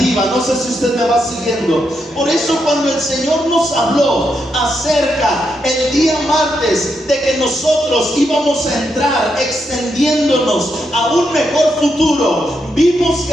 No sé si usted me va siguiendo. Por eso cuando el Señor nos habló acerca el día martes de que nosotros íbamos a entrar extendiéndonos a un mejor futuro, vimos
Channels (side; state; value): both; normal; correlation 0.82